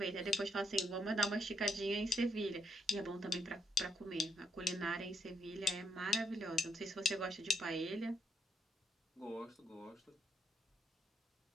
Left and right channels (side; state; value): both; normal; correlation 0.76